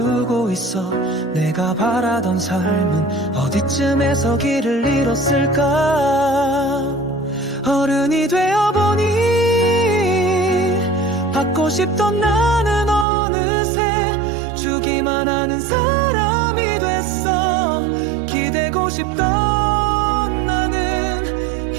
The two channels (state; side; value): drops out; left; at 13.1 s